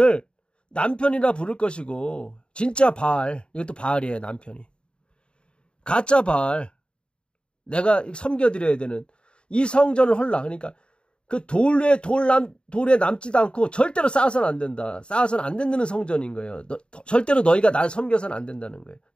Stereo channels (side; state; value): right; late; 0.053 ms